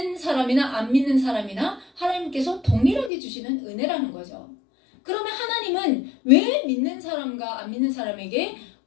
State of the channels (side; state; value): right; drops out; at 3.1 s